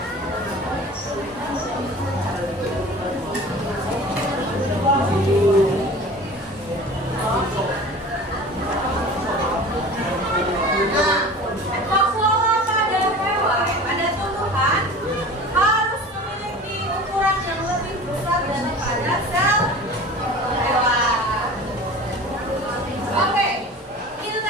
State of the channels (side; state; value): both; normal; correlation 0.39